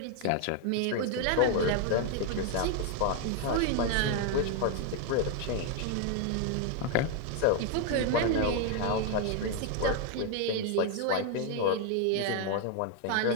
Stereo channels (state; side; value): different; both; correlation 0.01